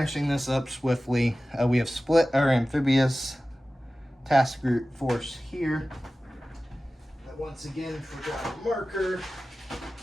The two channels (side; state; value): both; normal; correlation 0.96